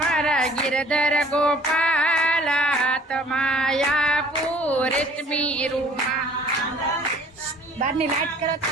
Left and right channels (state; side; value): normal; both; correlation 0.53